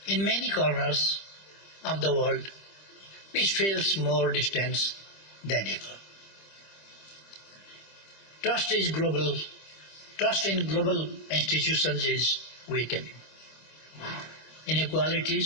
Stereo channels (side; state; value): right; late; 25 ms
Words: In many corners of the world, peace feels more distant than ever. Trust in global institutions is weakening.